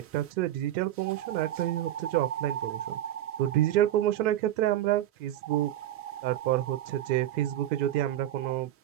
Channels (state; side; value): quieter; left; 12.8 dB